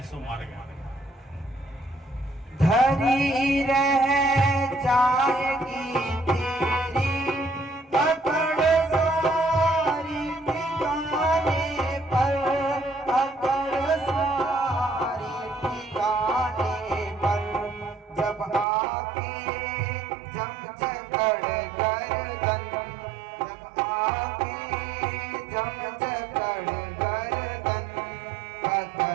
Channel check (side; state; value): left; drops out; at 18.7 s